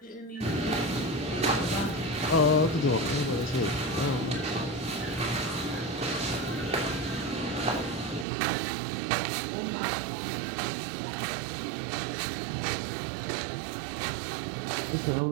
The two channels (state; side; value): drops out; left; at 8.2 s